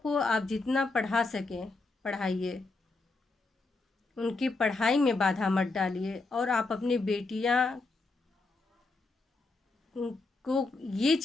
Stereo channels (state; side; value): quieter; right; 3.5 dB